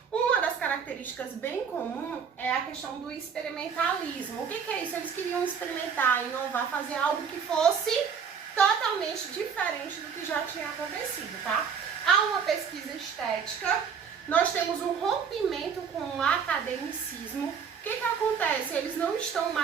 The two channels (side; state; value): left; quieter; 6.7 dB